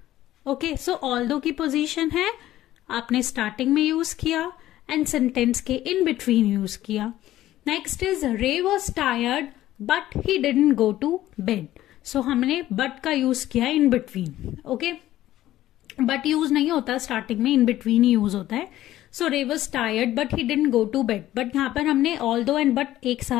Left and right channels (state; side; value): quieter; right; 14.2 dB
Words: Okay, so although की position है, आपने starting में use किया and sentence के इन बिटवीन यूज किया. Next is Ray was tired but he didn't go to bed. So हमने but का use किया in between. Okay, but use नहीं होता स्टार्टिंग में, इन बिटवीन ही यूज होता है. So Ray was tired but he didn't go to bed. But यहां पर हमने ऑल्दो एंड बट एक